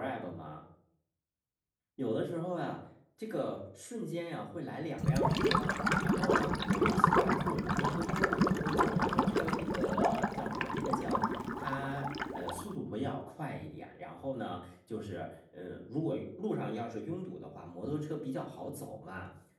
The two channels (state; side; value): identical; both; correlation 1.00